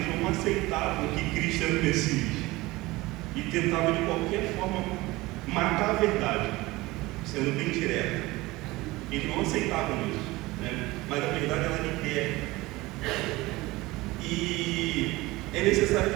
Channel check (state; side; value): quieter; left; 20.4 dB